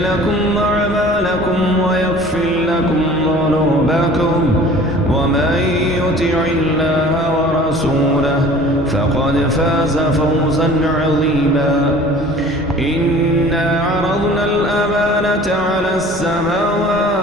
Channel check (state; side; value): normal; both; correlation 0.47